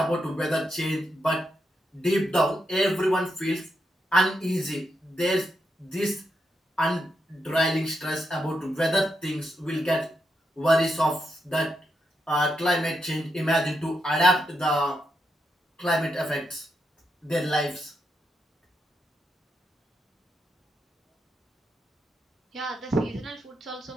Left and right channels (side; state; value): both; normal; correlation 0.83